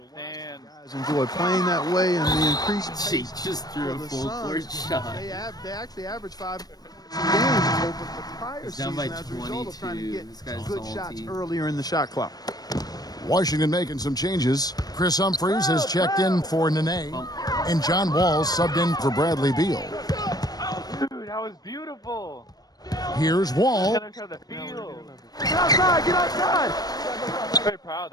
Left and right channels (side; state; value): right; late; 0.19 ms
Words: stand. Guys enjoy playing that way, and the increased She pace just threw a for the full court Suns, shot. They actually average 5 games over the prior He's season down by as a result of trying to 22. get This guy's good salty. shots earlier in the shot clock. Washington making some changes. Chris Humphries has checked in for Nene, and John Wall subbed in for Bradley Beal. Dude, that was beautiful. Here's Wall. Get inside the field. Get outside! Get outside! I'm very proud